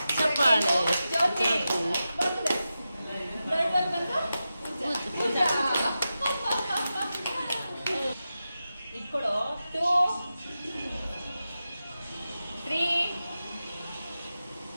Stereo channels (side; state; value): both; inverted; correlation -0.92